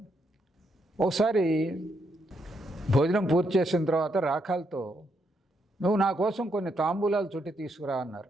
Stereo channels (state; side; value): normal; both; correlation 0.78